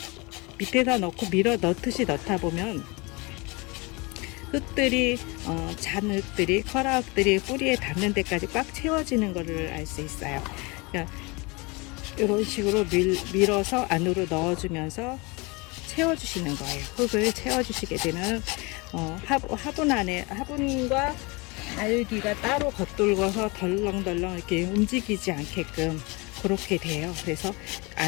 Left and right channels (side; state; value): right; quieter; 27.0 dB